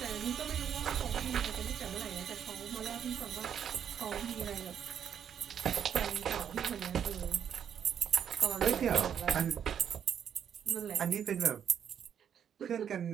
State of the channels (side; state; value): left; quieter; 8.5 dB